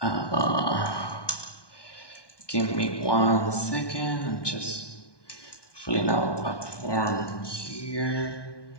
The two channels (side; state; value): right; late; 1.2 ms